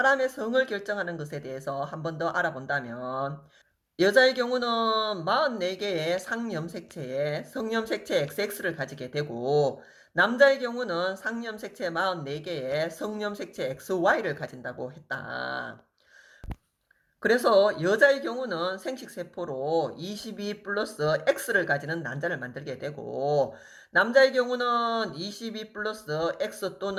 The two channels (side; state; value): both; identical; correlation 1.00